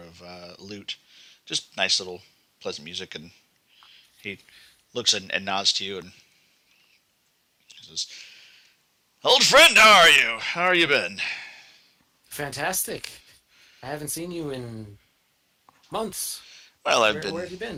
lute, just nice little pleasant music, and he looks and nods to you and says, "Old friend, how are you? How are you been?" Fantastic. I haven't seen you in months. Well, Where have you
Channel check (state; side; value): identical; both; correlation 1.00